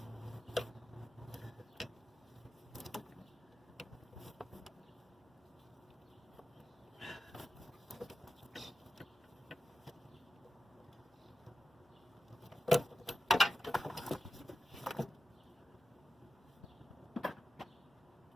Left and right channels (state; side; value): normal; both; correlation 0.90